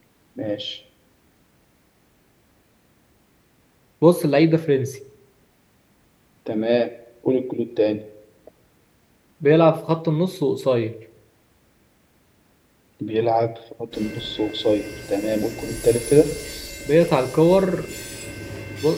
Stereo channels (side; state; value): both; identical; correlation 1.00